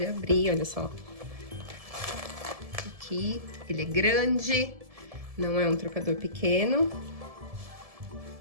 abrir, olha só. Aqui, ele é grande, não é um trocador pequeno.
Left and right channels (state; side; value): late; left; 1.7 ms